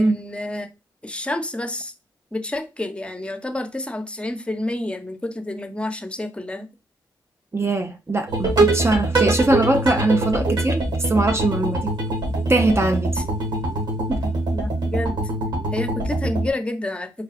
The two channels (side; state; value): both; normal; correlation 0.73